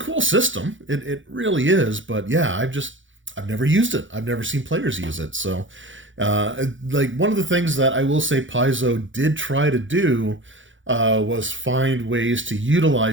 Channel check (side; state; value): left; late; 0.56 ms